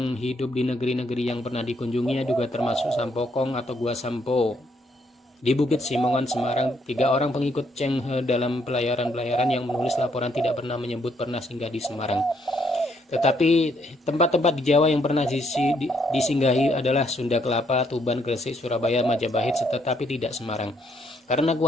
hidup di negeri-negeri yang pernah dikunjunginya juga termasuk Sampokong atau Gua Sampo. Di Bukit Simongan, Semarang, 3 orang pengikut Chenghe dalam pelayaran-pelayaran yang menulis laporan tidak pernah menyebut pernah singgah di Semarang. Tetapi tempat-tempat di Jawa yang pernah disinggahi adalah Sunda Kelapa, Tuban, Gresik, Surabaya, Majapahit, tetapi tidak Semarang. Karena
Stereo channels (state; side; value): normal; both; correlation 0.71